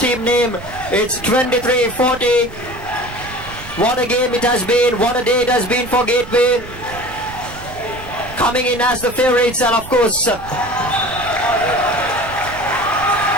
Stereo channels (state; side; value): noise; right; rumble, 16 dB below the sound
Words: name. It's 23-40. What a game it has been. What a day it has been for Gateway, coming in as the favorites, and of course